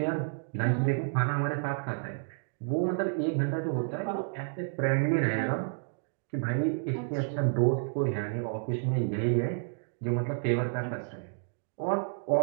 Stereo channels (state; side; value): silent; left; digital silence